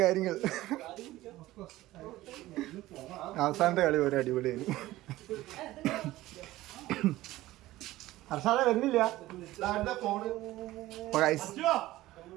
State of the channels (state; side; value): quieter; left; 16.6 dB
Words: കാര്യങ്ങൾ. അവസാനത്തെ കളി ഒരു അടിപൊളിയായിരുന്നു. അർഷാദ വരുന്നില്ല.